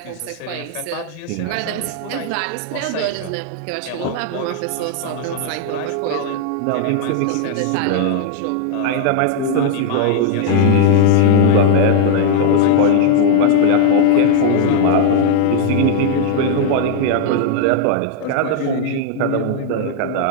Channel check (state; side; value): different; both; correlation 0.00